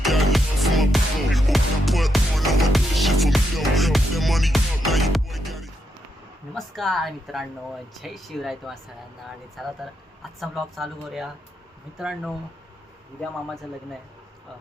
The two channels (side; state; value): both; normal; correlation 0.81